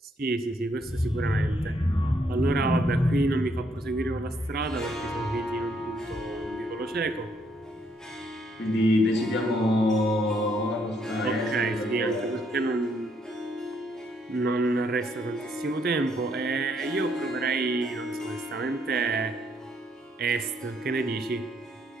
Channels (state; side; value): normal; both; correlation 0.71